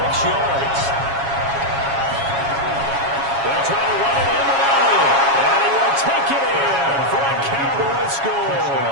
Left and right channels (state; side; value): late; left; 7.3 ms